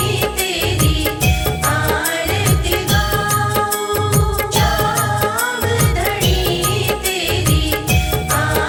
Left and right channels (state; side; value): identical; both; correlation 1.00